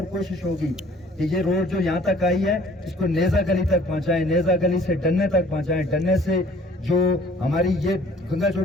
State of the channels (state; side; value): normal; both; correlation 0.55